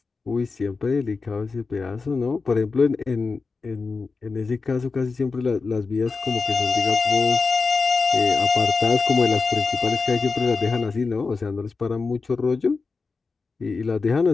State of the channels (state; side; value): quieter; right; 4.4 dB